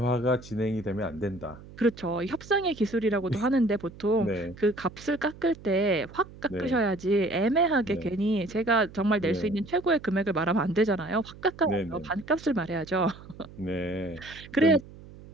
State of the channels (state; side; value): noise; right; hum, 18 dB below the sound